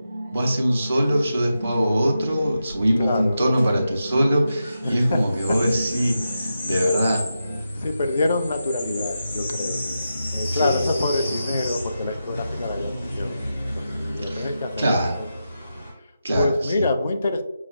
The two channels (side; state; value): both; inverted; correlation -0.88